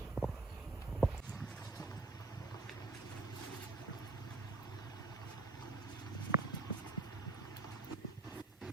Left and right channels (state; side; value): quieter; left; 3.2 dB